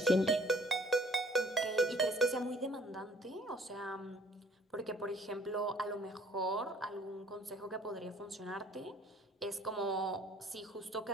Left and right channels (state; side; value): normal; both; correlation 0.57